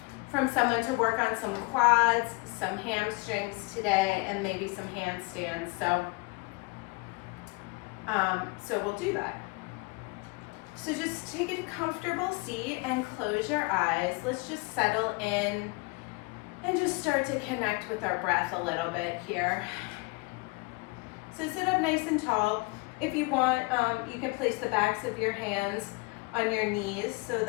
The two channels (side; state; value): right; quieter; 27.0 dB